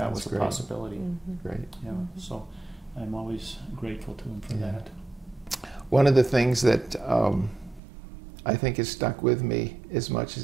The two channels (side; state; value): left; drops out; at 7.8 s